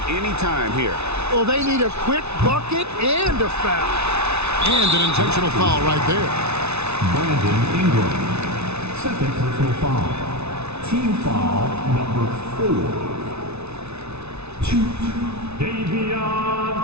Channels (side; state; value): left; late; 0.81 ms